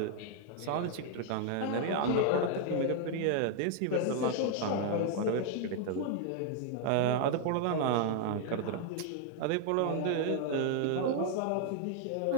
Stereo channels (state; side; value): different; both; correlation 0.00